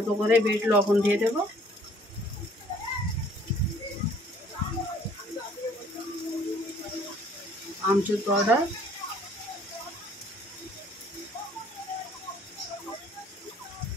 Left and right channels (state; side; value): normal; both; correlation 0.58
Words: করে বিট লবণ দিয়ে দেব, আমচুর পাউডার,